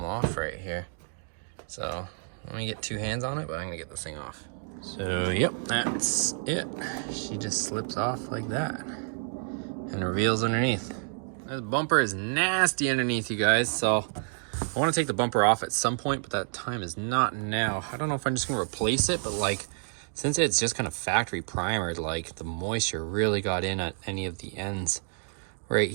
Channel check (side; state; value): left; silent; 58 dB below the other